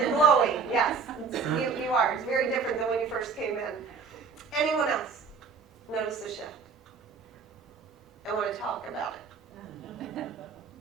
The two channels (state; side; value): quieter; left; 5.2 dB